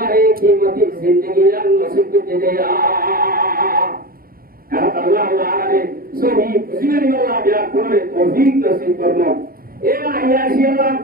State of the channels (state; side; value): late; left; 0.43 ms